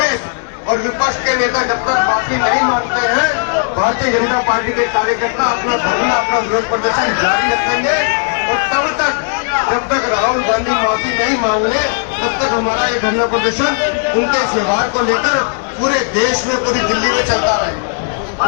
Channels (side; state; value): right; silent; 59 dB below the other